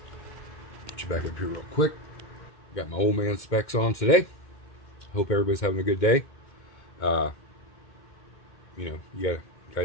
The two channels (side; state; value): right; late; 2.2 ms